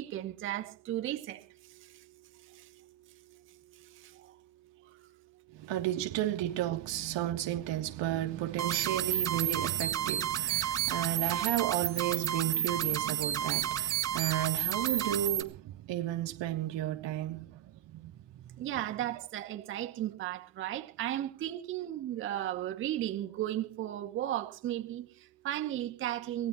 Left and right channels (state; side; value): quieter; left; 11.8 dB